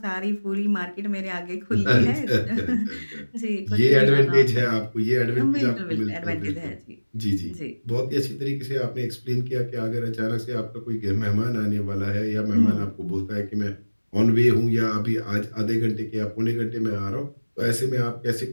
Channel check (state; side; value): inverted; both; correlation -1.00